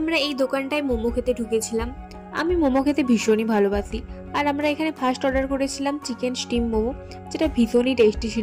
এই দোকানটায় মোমো খেতে ঢুকেছিলাম। আমি মোমো খেতে ভীষণই ভালোবাসি। আর আমরা এখানে ফার্স্ট অর্ডার করেছিলাম চিকেন স্টিম মোমো, যেটা ভীষণই টেস্টি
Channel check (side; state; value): both; identical; correlation 1.00